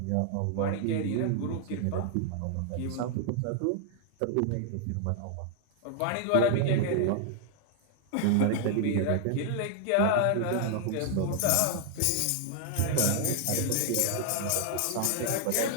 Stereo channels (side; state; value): both; different; correlation 0.00